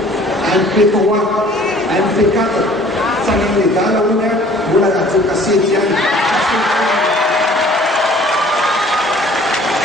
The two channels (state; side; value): normal; both; correlation 0.52